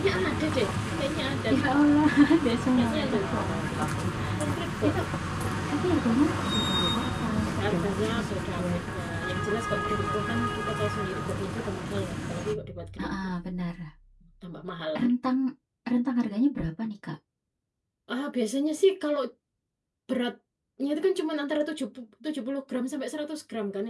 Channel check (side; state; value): both; identical; correlation 1.00